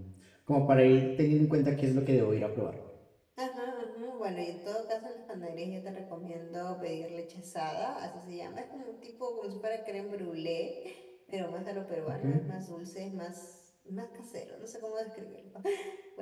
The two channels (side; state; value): both; identical; correlation 1.00